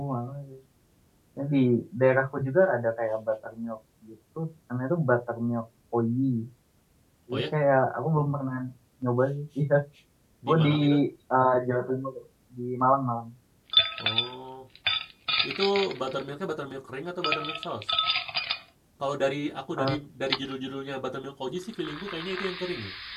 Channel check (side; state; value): both; identical; correlation 1.00